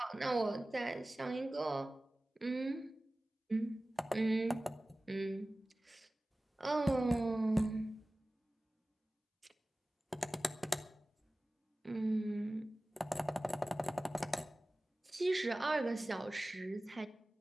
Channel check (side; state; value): both; normal; correlation 0.97